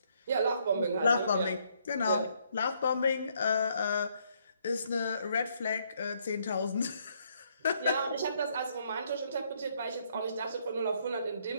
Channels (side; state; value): both; inverted; correlation -0.70